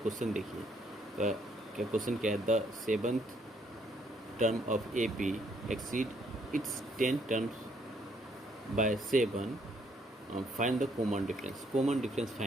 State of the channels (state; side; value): normal; both; correlation 0.69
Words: देखिए क्या क्वेश्चन क्या है, the 7th term of AP exceed its 10 terms by 7, find the common difference. Common difference